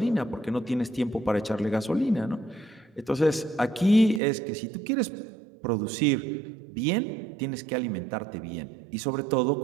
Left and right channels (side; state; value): left; drops out; at 4.2 s